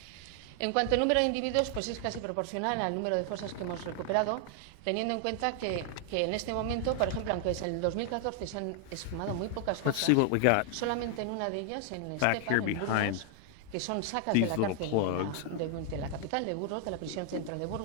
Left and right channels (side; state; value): both; different; correlation 0.00